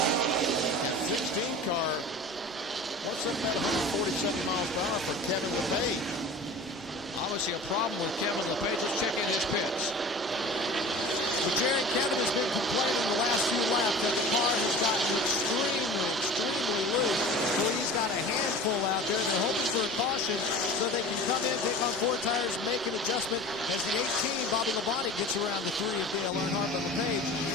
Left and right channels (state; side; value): noise; right; rumble, 26 dB below the sound